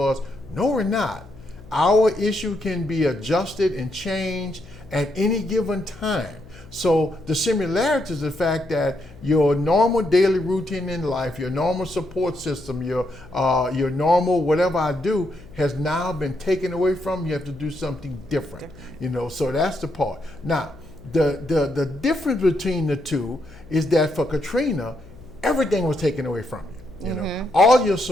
us, no, we're not. Our issue can be adjusted and changed at any given time. So the similarity is the fact that your normal daily routine in life, your normal support system, your normal whatever I do has now been taken away from you. You have to do something different. So that's the part. Now, the difference between the two is that for Katrina, everything was taken away from you. All your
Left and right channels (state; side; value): noise; left; hum, 20 dB below the sound